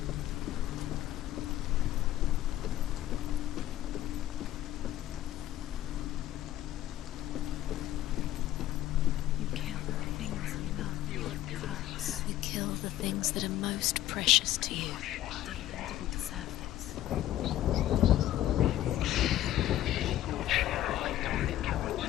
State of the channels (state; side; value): quieter; right; 13.4 dB